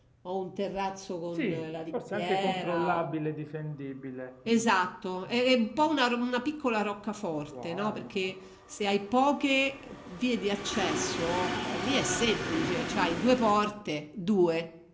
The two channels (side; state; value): both; identical; correlation 1.00